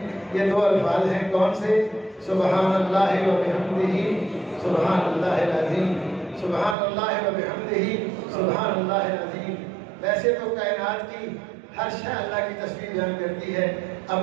یہ دو الفاظ ہیں کون سے؟ سبحان اللہ و بحمدہ سبحان اللہ العظیم، سبحان اللہ و بحمدہ سبحان اللہ العظیم۔ ویسے تو کائنات کی ہر شے اللہ کی تسبیح بیان کرتی ہے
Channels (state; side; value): drops out; left; at 6.8 s